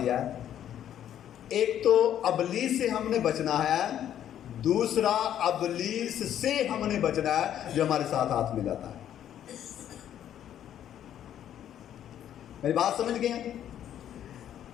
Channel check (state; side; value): quieter; right; 10.6 dB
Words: ہے۔ ایک تو ابلیس سے ہم نے بچنا ہے، دوسرا ابلیس سے ہم نے بچنا ہے جو ہمارے ساتھ ہاتھ ملاتا ہے۔ میری بات سمجھ گئے ہیں؟